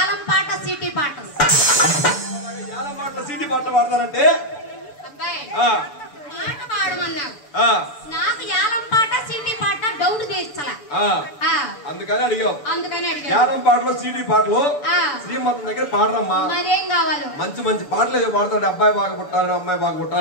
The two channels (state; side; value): late; right; 6.9 ms